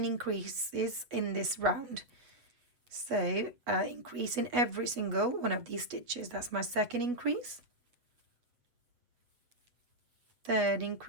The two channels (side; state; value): left; late; 8.1 ms